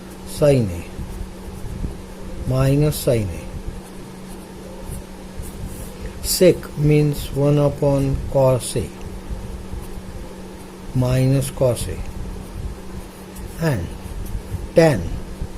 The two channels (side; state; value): both; identical; correlation 1.00